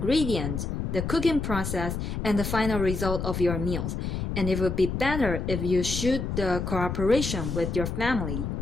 the cooking process, and the final result of your meals. And it would be better if you shoot the cooperation with your family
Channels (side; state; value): left; noise; rumble, 3 dB below the sound